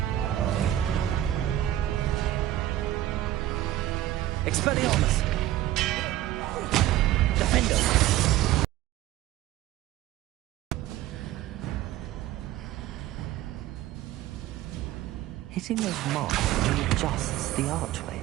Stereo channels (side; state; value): left; quieter; 14.1 dB